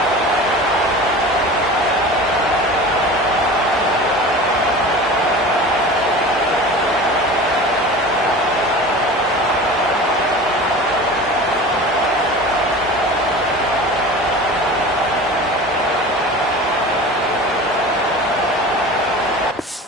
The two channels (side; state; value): both; normal; correlation 0.36